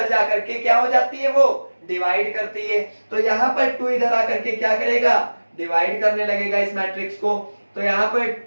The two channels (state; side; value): inverted; both; correlation -1.00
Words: जाकर के क्या हो जाती है वो डिवाइड करती है। तो यहाँ पर 2 इधर आकर के क्या करेगा डिवाइड करने लगेगा इस मैट्रिक्स को। तो यहाँ पर